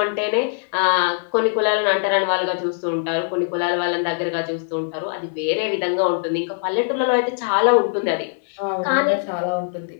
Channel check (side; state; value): right; silent; digital silence